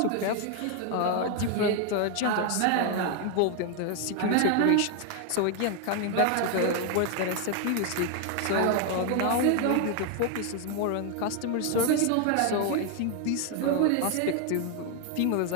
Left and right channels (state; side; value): different; both; correlation 0.01